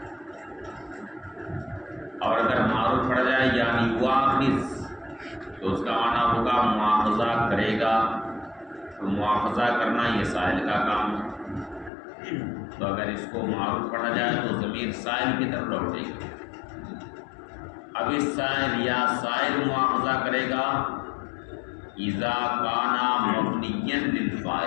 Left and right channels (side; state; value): right; drops out; at 11.9 s